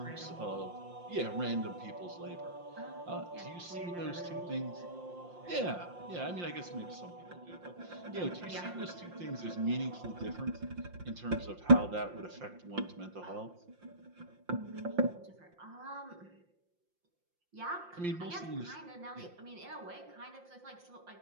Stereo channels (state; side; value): late; left; 5.7 ms